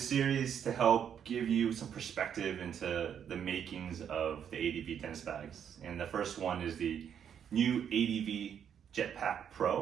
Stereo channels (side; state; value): left; quieter; 8.5 dB